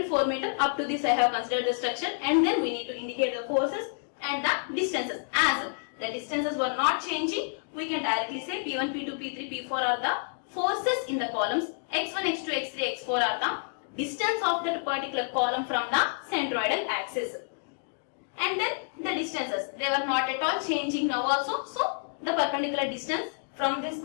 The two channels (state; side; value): silent; right; digital silence